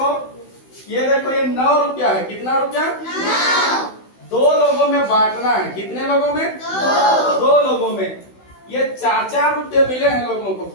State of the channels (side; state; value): right; late; 16 ms